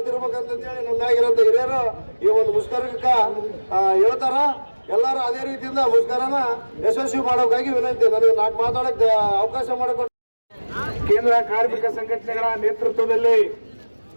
ನಮ್ಮಾಗಿರೋಂಥ ಹಿರಿಯರು ಈ ಒಂದು ಮುಷ್ಕರಕ್ಕೆ ಹೇಳ್ತಾರ. ಎಲ್ಲರೂ ಅದೇ ರೀತಿಯಿಂದ ಮುಷ್ಕರನ ಯಶಸ್ವಿ ಮಾಡೋಕ್ಕಾಗಿ ವಿನಂತಿ. ನನಗೆ 4 ಮಾತಾಡಕ್ಕೆ ಅವಕಾಶ ಮಾಡಿಕೊಟ್ಟು ಕೇಂದ್ರ ಕಾರ್ಮಿಕ ಸಂಘಟನೆಗಳ ನೇತೃತ್ವದಲ್ಲಿ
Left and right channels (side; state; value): both; inverted; correlation -1.00